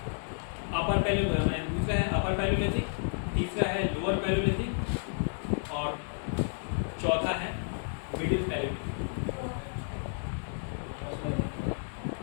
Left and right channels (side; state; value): right; silent; 57 dB below the other